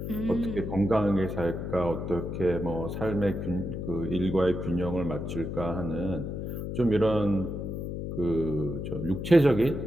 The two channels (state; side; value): noise; left; hum, 5 dB below the sound